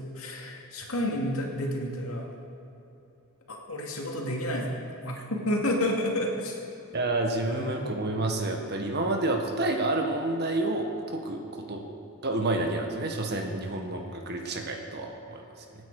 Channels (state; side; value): normal; both; correlation 0.18